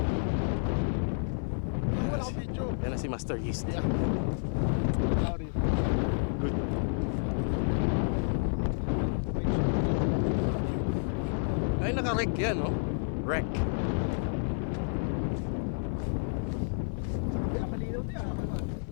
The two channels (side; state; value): right; silent; 58 dB below the other